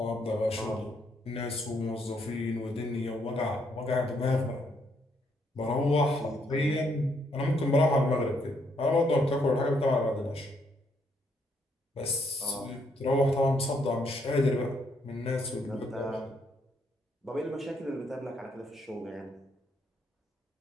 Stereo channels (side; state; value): both; normal; correlation 0.73